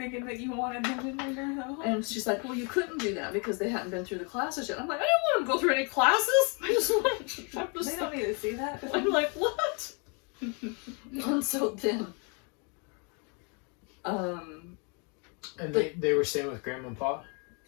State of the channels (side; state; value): right; quieter; 35.3 dB